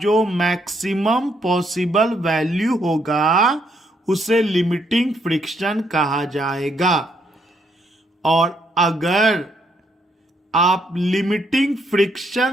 मैक्सिमम पॉसिबल वैल्यू होगा उसे लिमिटिंग फ्रिक्शन कहा जाएगा। और अगर आप लिमिटिंग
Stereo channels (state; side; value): normal; both; correlation 0.73